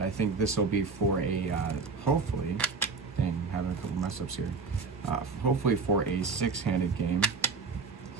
I think this will be for a hopefully. Dang, I'm having a couple mess ups here. Hopefully for a 6-handed game.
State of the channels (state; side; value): quieter; left; 4.6 dB